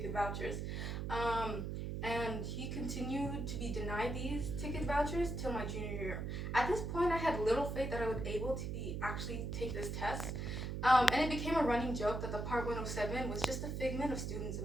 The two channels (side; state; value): right; noise; hum, 3 dB below the sound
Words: vouchers, and he continued to be denied these ticket vouchers till my junior year. At this point, I had little faith that I would be able to actually take this test, and it became a running joke that the Part 107 was just a figment of students'